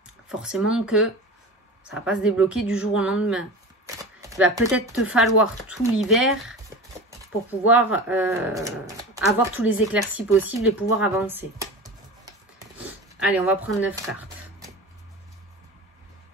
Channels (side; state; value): both; normal; correlation 0.31